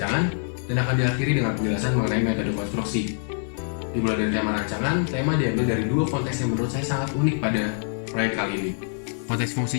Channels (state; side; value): silent; right; 62 dB below the other